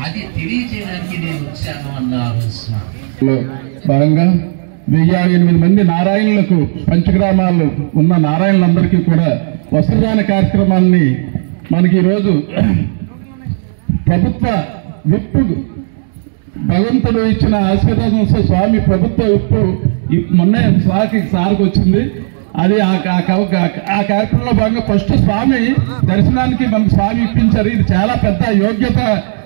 అది తెలియజేయడానికి నేను వచ్చాను అన్నారు స్వామి. భాగంగా 1008 మంది నారాయణులకు పంచగ్రామాల్లో ఉన్న నారాయణులందరికీ కూడా వస్త్రదాన కార్యక్రమాన్ని మనకి ఈరోజు ప్రభుత్వ విప్పు భగవంతుడు ఇచ్చిన ఆశీర్వాదంతో స్వామి ప్రభుత్వ విప్పు మొన్న సార్కి వచ్చింది. అది ఆ కార్యక్రమంలో భాగంగా ఫస్ట్ స్వామి దర్శనానికి మనకు స్వామి ఇప్పించారు. ఇది చాలా పెద్ద యోగ్యత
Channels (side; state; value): left; silent; digital silence